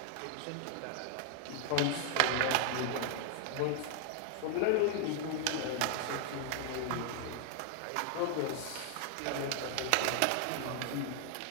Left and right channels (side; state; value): both; different; correlation 0.00